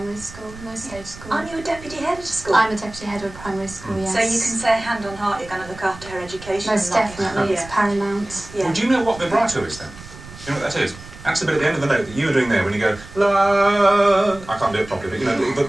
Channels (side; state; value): right; noise; rumble, 17 dB below the sound